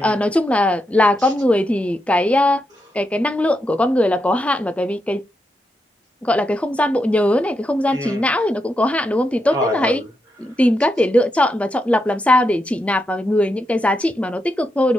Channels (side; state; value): both; normal; correlation 0.84